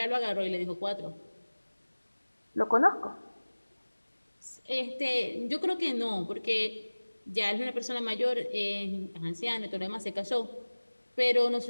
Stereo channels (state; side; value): inverted; both; correlation -1.00